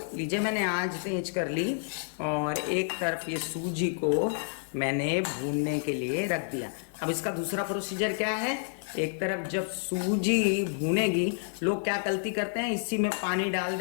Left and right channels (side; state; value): right; silent; digital silence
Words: लीजिए मैंने आज तेज कर ली और एक तरफ ये सूजी को मैंने भूनने के लिए रख दिया। अब इसका दूसरा प्रोसीजर क्या है, एक तरफ जब सूजी भूनेगी, लोग क्या गलती करते हैं, इसी में पानी डाल